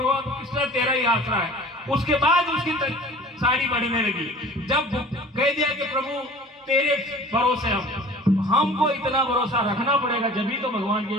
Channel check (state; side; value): normal; both; correlation 0.44